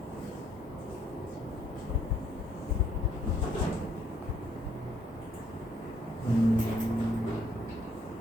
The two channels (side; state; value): both; normal; correlation 0.67